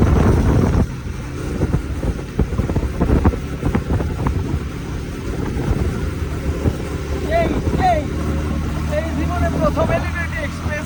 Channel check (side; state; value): both; identical; correlation 1.00